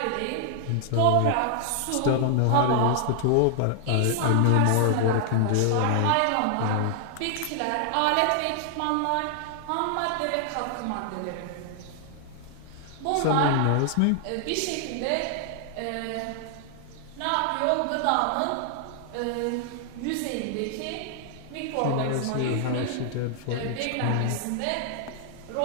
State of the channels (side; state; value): both; different; correlation 0.00